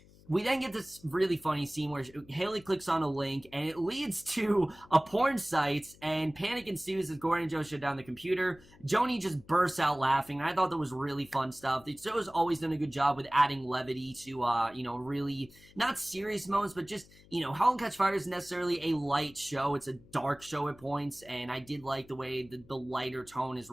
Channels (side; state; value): left; noise; hum, 25 dB below the sound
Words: we then get this really funny scene where Haley clicks on a link, and it leads to a porn site, and panic ensues as Gordon and Joe shut down the computer. Joni just bursts out laughing, and I thought that was really fun stuff. The show's always done a good job with adding levity to, really not serious moments, but just, Halt and Catch Fire isn't necessarily a light show. It's a dark show at points, and I did like the way the lighter tone is